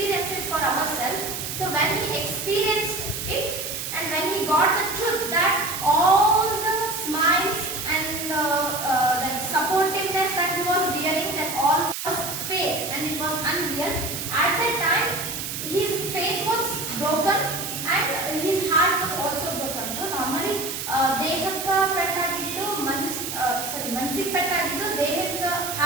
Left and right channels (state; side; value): noise; right; hiss, 5 dB below the sound